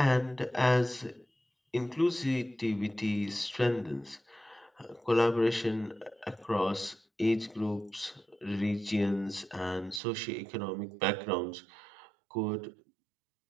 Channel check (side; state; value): left; drops out; at 10.0 s